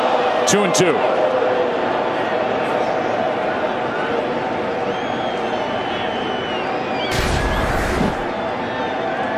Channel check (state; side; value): identical; both; correlation 1.00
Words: Two and 2.